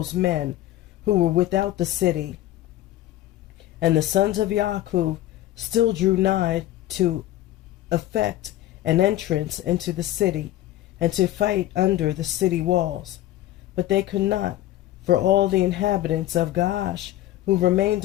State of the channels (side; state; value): right; quieter; 14.1 dB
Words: men who were without the city. And the sons of Yaakov still drew nigh to effect an entrance into the city, and to fight under the city walls. But they could not, for all the inhabitants of Gaash who remained